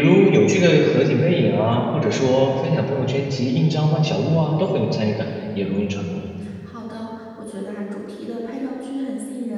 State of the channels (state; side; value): identical; both; correlation 1.00